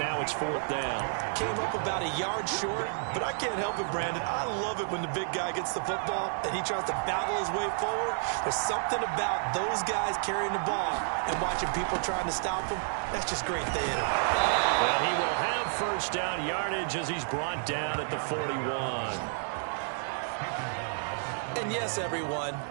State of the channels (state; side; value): silent; left; 57 dB below the other